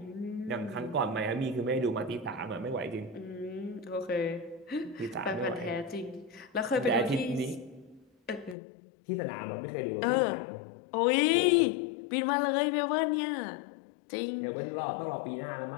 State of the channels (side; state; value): right; drops out; at 8.6 s